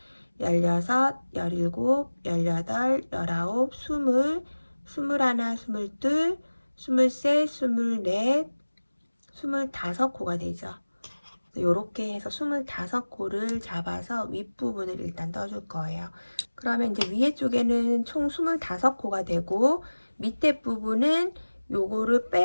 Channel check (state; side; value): inverted; both; correlation -1.00